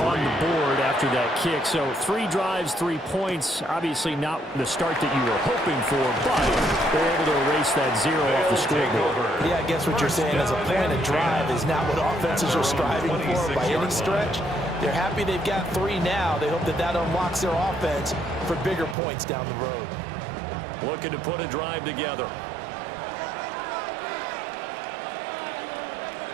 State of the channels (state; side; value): drops out; left; at 18.9 s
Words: on the board after that kick. So 3 drives, 3 points. Obviously not the start that you were hoping for, but they're able to erase that 0 off the scoreboard. Yeah, I guess what you're saying as a point of drive is not what offenses are striving for by any stretch. They're happy they've got 3 now. They hope that that unlocks their offense for bigger points down the road. Looking to put a drive together.